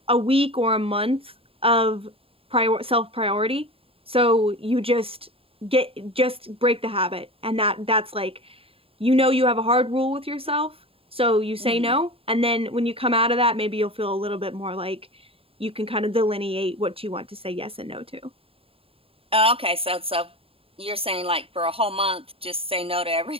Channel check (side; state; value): left; late; 0.27 ms